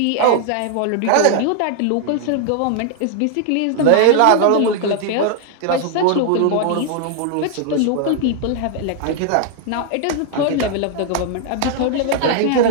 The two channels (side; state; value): both; different; correlation 0.00